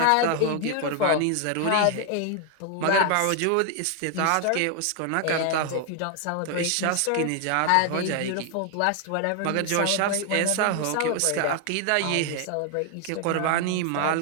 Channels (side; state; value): both; different; correlation 0.00